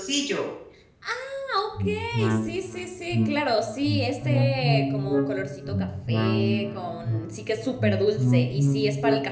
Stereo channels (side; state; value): both; identical; correlation 1.00